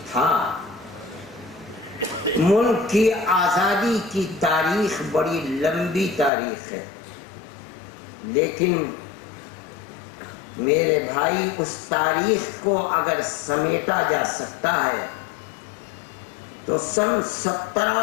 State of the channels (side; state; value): right; drops out; at 6.3 s